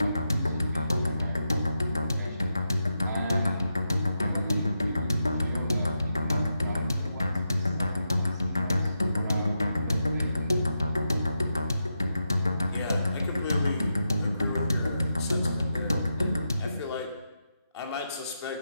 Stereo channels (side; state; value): both; inverted; correlation -0.87